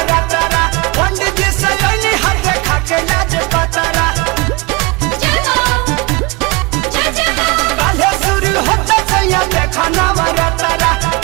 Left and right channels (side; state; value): left; quieter; 25.4 dB